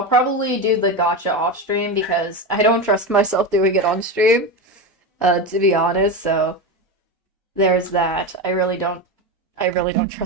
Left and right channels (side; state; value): both; normal; correlation 0.18